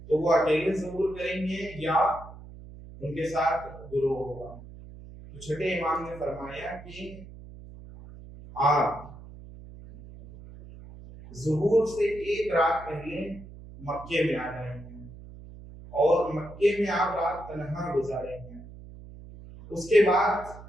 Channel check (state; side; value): noise; right; hum, 16 dB below the sound